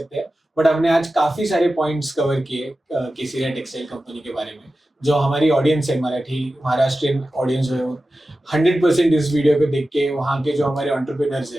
बट हमने आज काफी सारे पॉइंट्स कवर किए केसरिया टेक्सटाइल कंपनी के बारे में। जो हमारी ऑडियंस है, मराठी महाराष्ट्रियन ऑडियंस है, वो 100% इस वीडियो को देख के वहाँ के जो हमारे एंटरप्रेन्योर्स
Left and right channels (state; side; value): normal; both; correlation 0.94